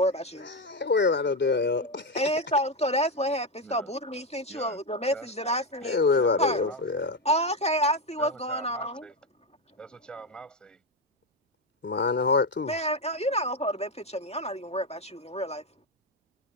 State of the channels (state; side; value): normal; both; correlation 0.10